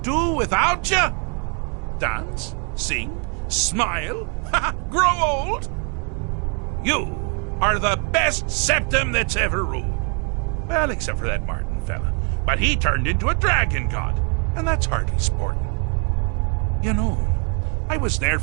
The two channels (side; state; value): left; quieter; 38.7 dB